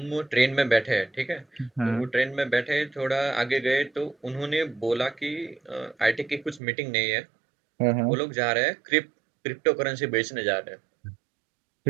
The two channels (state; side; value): drops out; left; at 6.6 s